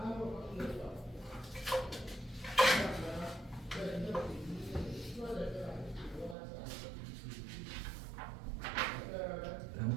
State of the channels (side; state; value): left; drops out; at 6.4 s